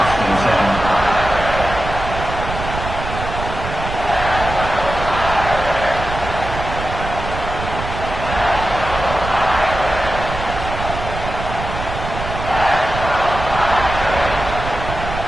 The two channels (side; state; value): right; noise; rumble, 7 dB below the sound